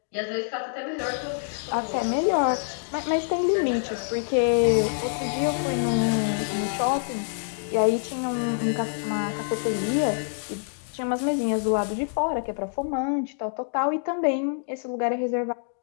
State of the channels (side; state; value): right; silent; digital silence